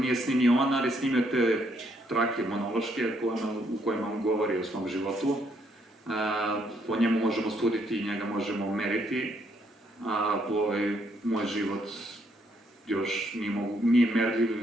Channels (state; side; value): normal; both; correlation 0.72